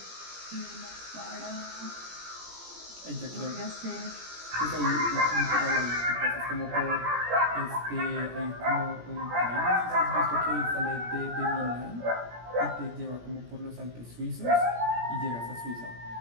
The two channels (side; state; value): left; late; 17 ms